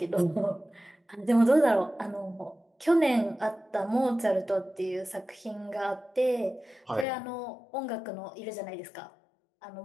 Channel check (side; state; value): right; drops out; at 7.1 s